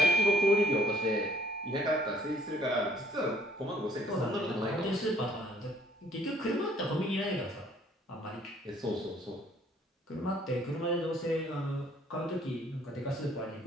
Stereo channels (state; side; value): normal; both; correlation 0.59